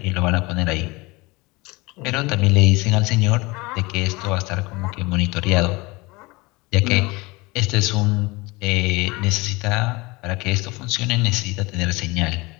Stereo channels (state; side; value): quieter; right; 24.0 dB